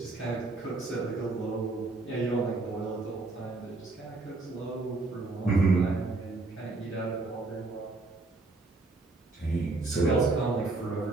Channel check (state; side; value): quieter; left; 3.3 dB